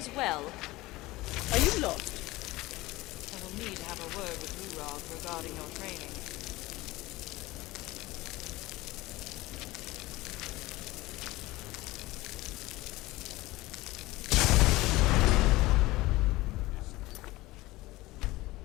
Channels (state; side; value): quieter; right; 19.4 dB